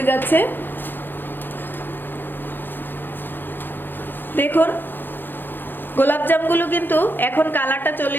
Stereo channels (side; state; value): right; late; 0.096 ms